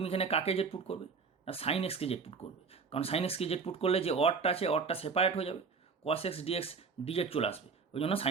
এখানে কাকে জেড পুট করবে না সাইন এক্সকে জেড পুট করবে, কারণ সাইন এক্সকে জেড পুট করলে যে অডটা আছে অডটা সেপারেট হয়ে যাবে, কস এক্স ডিএক্স ডিজেড চলে আসবে, ওই জন্য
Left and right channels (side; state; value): left; quieter; 5.2 dB